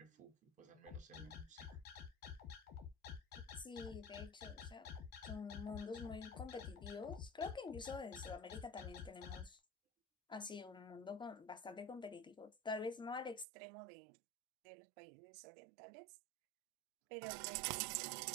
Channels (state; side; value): drops out; left; at 13.5 s